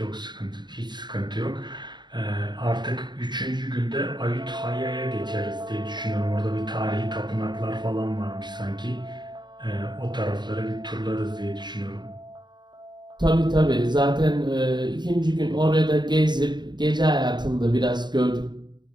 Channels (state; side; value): late; left; 0.21 ms